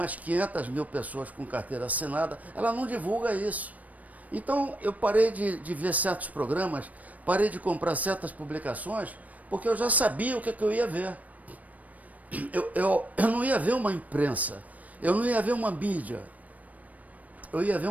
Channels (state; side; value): late; left; 0.072 ms